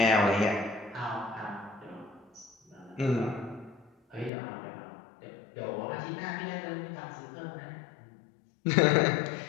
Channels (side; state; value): right; drops out; at 4.3 s